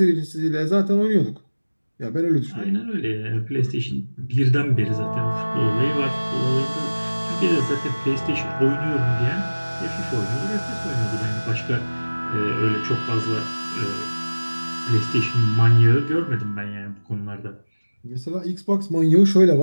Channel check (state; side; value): inverted; both; correlation -1.00